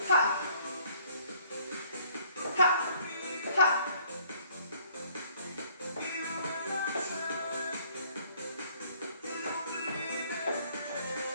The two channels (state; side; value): inverted; both; correlation -0.60